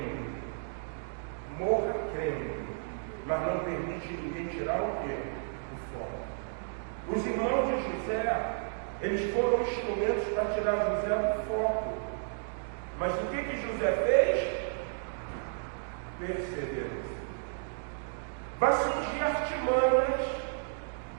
Morra crendo. Mas não permite ninguém tirar o quê? O foco. Os irmãos de José, eles foram instrumentos para tirar José do foco. Mas o que José fez? Perseverança. semanas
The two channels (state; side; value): silent; left; digital silence